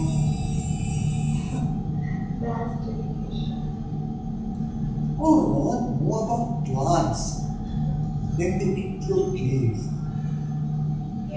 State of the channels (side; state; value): both; identical; correlation 1.00